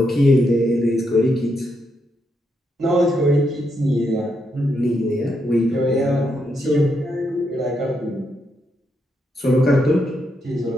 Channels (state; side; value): normal; both; correlation 0.80